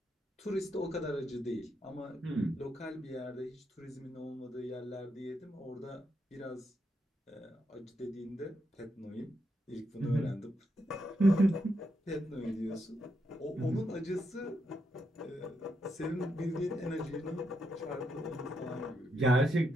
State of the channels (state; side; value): normal; both; correlation 0.81